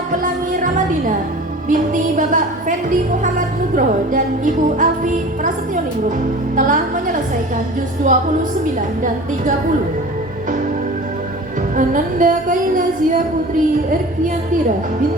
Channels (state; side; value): normal; both; correlation 0.39